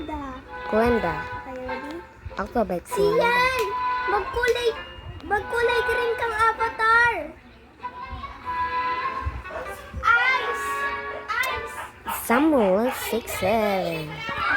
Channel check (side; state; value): both; identical; correlation 1.00